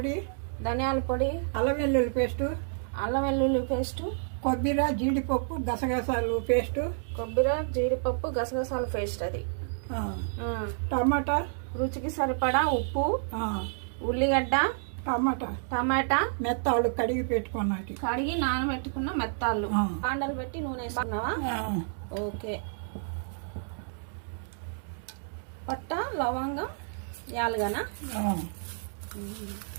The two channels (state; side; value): silent; left; digital silence